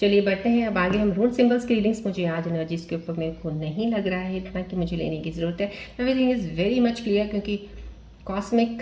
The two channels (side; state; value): both; identical; correlation 1.00